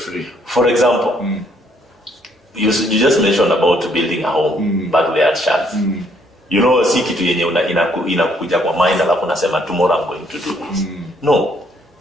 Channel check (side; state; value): both; normal; correlation 0.67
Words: For example, you just mentioned about building a home back there at Charles. Si kitu yenye inakuja kwa mind alafu nasema tomorrow I'm going to do this. No,